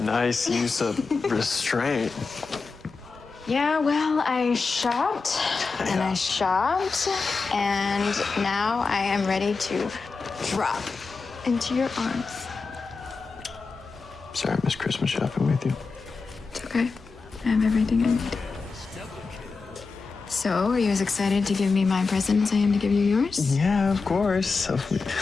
Nice use of restraint. Yeah, well, I shopped and I shopped, and now I am ready to drop into your arms. Sorry, I missed Christmas shopping with you. It's okay. I have everything I need. So, are you as excited to give me my present as I am to give you yours? Yeah, of course.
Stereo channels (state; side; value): quieter; right; 4.4 dB